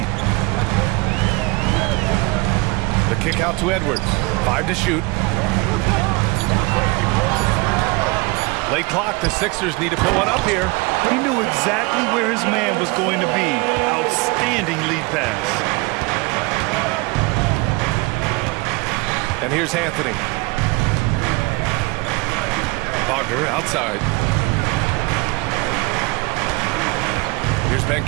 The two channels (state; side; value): quieter; left; 25.3 dB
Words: The kick out to Edwards. 5 to shoot. Late clock, the Sixers need to put one up here. He knew exactly where his man was going to be. Outstanding lead pass. And here's Anthony. Wagner outside. Here's